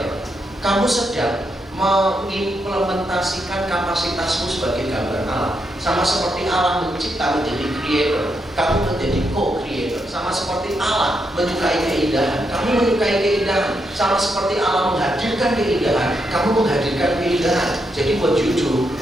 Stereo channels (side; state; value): both; normal; correlation 0.81